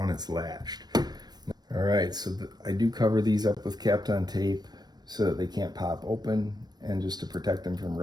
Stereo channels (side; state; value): left; late; 0.19 ms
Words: it's latched. All right, so I do cover these up with Kapton tape so that they can't pop open, and just to protect them from